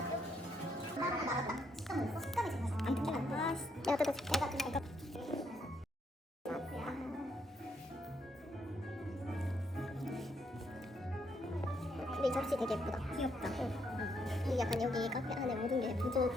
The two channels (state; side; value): normal; both; correlation 0.75